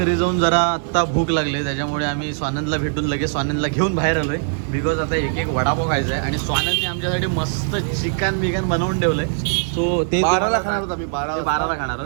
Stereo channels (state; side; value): silent; left; digital silence